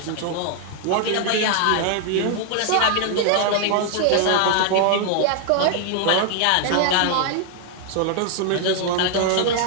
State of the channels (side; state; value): both; different; correlation 0.00